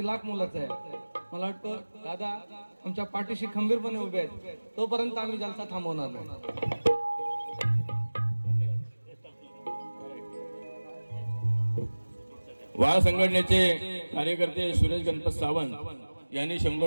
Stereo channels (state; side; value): inverted; both; correlation -1.00